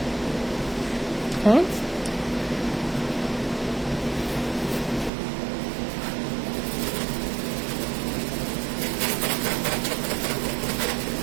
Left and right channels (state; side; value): drops out; left; at 5.1 s